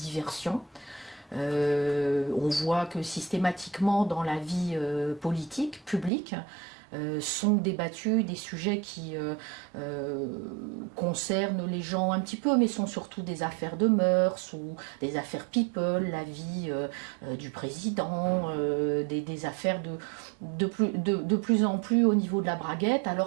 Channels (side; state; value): left; drops out; at 6.1 s